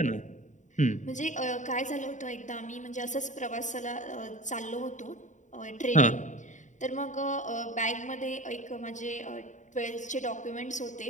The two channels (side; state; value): right; late; 0.36 ms